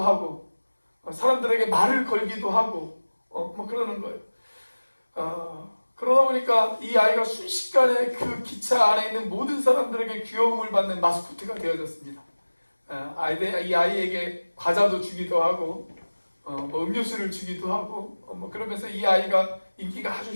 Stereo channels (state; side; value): inverted; both; correlation -1.00